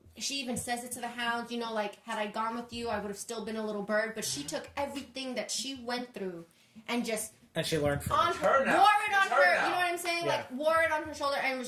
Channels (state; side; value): identical; both; correlation 1.00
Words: She even says it to the Hound. You know, like had I gone with you, I would have still been a little bird. But she took everything that she went through, and just And she learned from on it. her, her now. wore it on It's her her. now. You know what I'm saying? Yeah. Like wore it on her shoulder, and